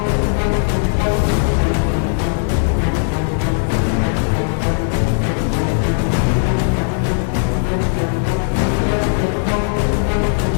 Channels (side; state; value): right; silent; digital silence